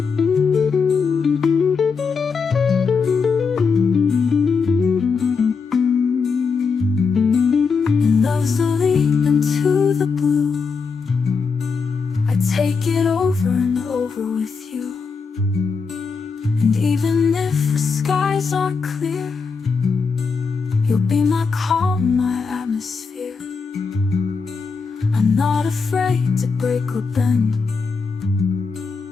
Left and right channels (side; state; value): right; quieter; 5.2 dB